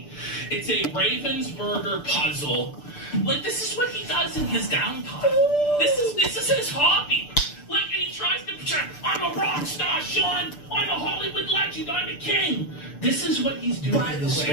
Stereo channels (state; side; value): late; right; 6.8 ms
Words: It's a Ravensburger puzzle. Like, this is what he does in his downtime. This is his hobby. Like, and he tries to pretend, I'm a rock star, Sean. I'm a Hollywood legend. I'm a king. This is what he's doing in his